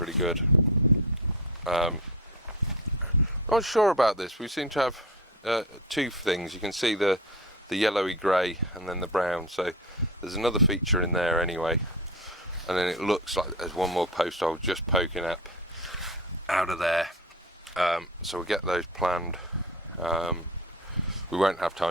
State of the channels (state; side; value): normal; both; correlation 0.28